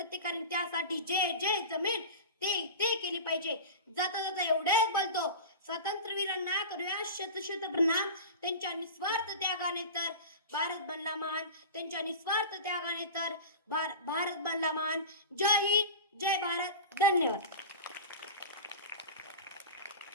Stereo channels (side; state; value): both; inverted; correlation -0.31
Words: त्यासाठी जे जमेल ते केली पाहिजे. जाता एवढेच बोलतो, स्वातंत्र्यवीरांना करूया शत प्रणाम. त्यांच्या निस्वार्थ त्यागाने तर भारत बनला महान. जय हिंद, जय भारत. धन्यवाद.